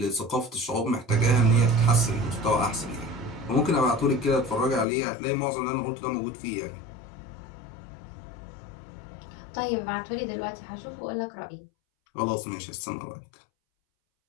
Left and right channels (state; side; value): drops out; right; at 4.9 s